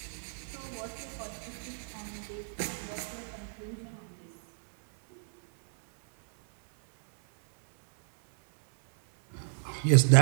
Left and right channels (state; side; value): silent; left; 57 dB below the other